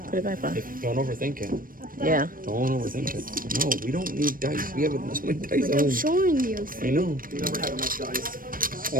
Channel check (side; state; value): left; late; 0.41 ms